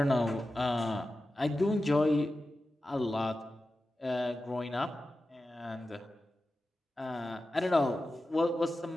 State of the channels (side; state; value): both; normal; correlation 0.93